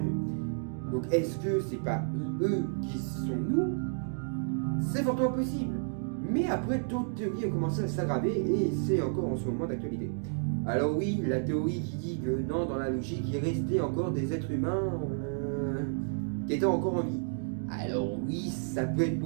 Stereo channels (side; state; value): left; silent; digital silence